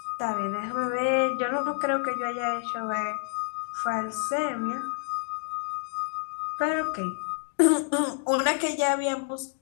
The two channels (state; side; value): silent; right; 59 dB below the other